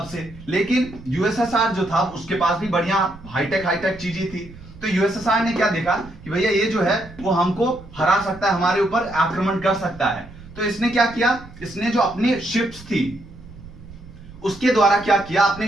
लेकिन यूएसएसआर जो था उसके पास भी बढ़िया हाईटेक चीजें थी। तो यूएसएसआर ने क्या देखा कि भैया ये जो है वो हमको हरा सकता है, हमारे ऊपर आक्रमण कर सकता है। तो इसने क्या किया, इसने जो अपनी शिप्स थी उसके द्वारा क्या किया,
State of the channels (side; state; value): right; noise; rumble, 18 dB below the sound